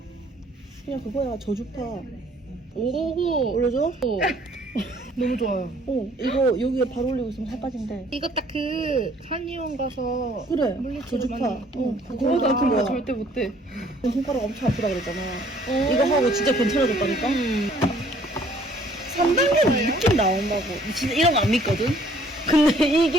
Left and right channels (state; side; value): normal; both; correlation 0.59